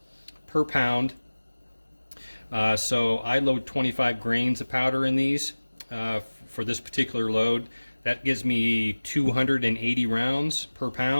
per pound. So I load 25 grains of powder in these for this particular load. That gives me 280 rounds per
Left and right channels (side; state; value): both; inverted; correlation -1.00